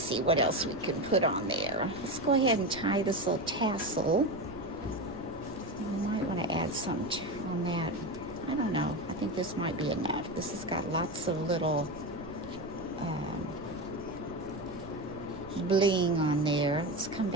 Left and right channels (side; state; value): right; noise; rumble, 16 dB below the sound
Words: what else we can put on there. Let's go ahead and tie this little tassel. I might want to add some on that. I don't know. I think this might be enough. This has got lots of little bling on there. Let's come